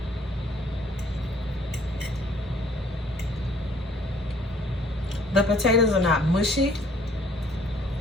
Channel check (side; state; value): both; normal; correlation 0.60